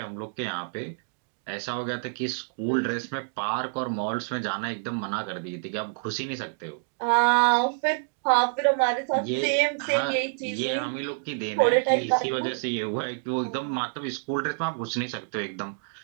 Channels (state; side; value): silent; left; digital silence